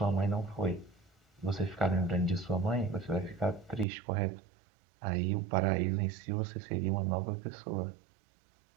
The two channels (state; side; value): drops out; left; at 3.9 s